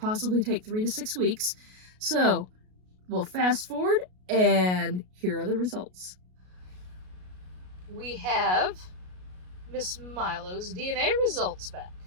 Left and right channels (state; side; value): late; left; 33 ms